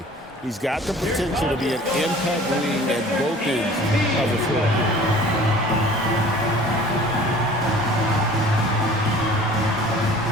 He's got the potential to be an impact wing at both ends of the floor.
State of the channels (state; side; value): normal; both; correlation 0.47